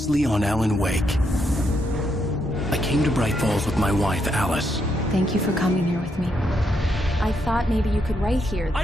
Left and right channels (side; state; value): both; normal; correlation 0.78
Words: on Alan Wake. I came to Bright Falls with my wife, Alice. Thank you for coming here with me. I thought maybe you could write here. I